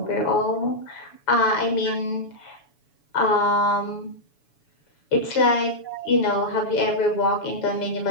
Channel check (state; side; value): late; right; 7.1 ms